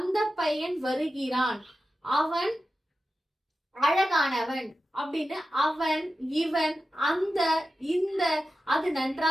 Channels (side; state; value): both; normal; correlation 0.92